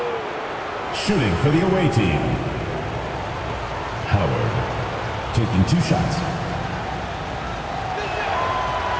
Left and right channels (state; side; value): identical; both; correlation 1.00